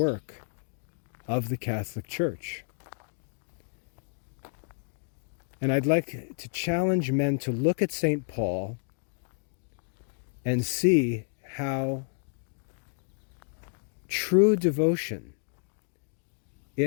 of the Catholic Church. And I'd like to challenge men to look at St. Paul and see how true devotion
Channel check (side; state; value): right; silent; 58 dB below the other